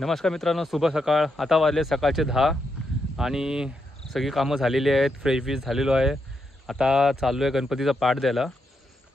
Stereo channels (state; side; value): normal; both; correlation 0.82